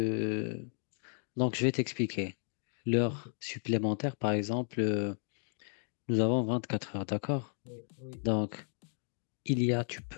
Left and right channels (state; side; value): silent; right; 55 dB below the other